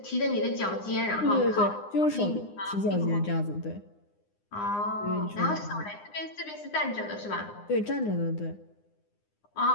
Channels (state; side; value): late; right; 9.8 ms